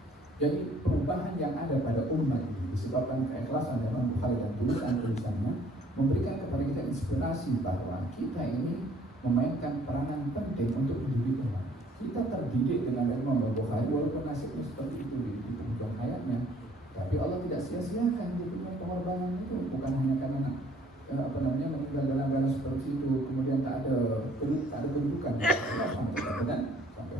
Jadi perubahan yang ada pada umat ini disebabkan keikhlasan Imam Bukhari dan tulisan-tulisannya memberikan kepada kita inspirasi bahwa kita ini memainkan peranan penting untuk mendidik umat. Kita terdidik dengan Imam Bukhari walaupun nasibnya seperti itu di penghujung hayatnya, tapi Allah tidak sia-siakan dia punya pengorbanan itu, bukan hanya karena meninggal dalam keadaan seperti itu kemudian tak ada kedudukan. Sampai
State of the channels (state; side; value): normal; both; correlation 0.58